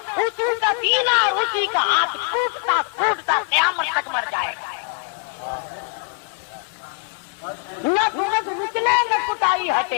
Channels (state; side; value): quieter; right; 34.9 dB